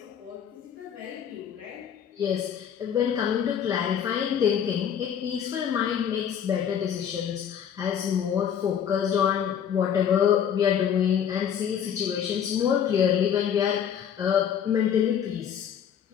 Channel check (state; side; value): quieter; right; 8.6 dB